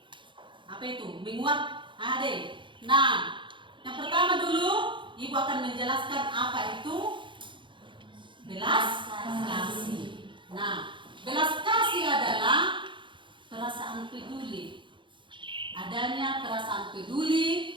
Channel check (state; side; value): late; left; 0.23 ms